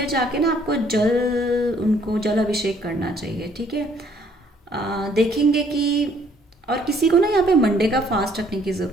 जाके ना आपको उनको जल अभिषेक करना चाहिए, ठीक है। देखेंगे कि, और किसी को ना यहाँ पे मंडे का फास्ट रखने की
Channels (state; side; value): normal; both; correlation 0.63